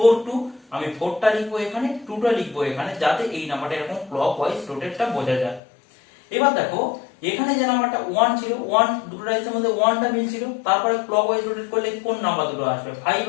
2, আমি 4টা লিখবো এখানে, 2টা লিখবো এখানে, যাতে এই নাম্বারটা এরকম ক্লক ওয়াইজ রোটেটটা বোঝা যায়। এবার দেখো এখানে যে নাম্বারটা 1 ছিল, 1 দুটো ডাইসের মধ্যে 1টা মিলছিল, তারপরে ক্লক ওয়াইজ রোটেট করলে কোন নাম্বার দুটো আসবে, 5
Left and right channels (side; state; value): right; drops out; at 5.6 s